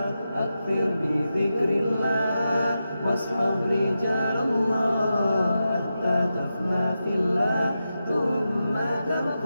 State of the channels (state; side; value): inverted; both; correlation -0.90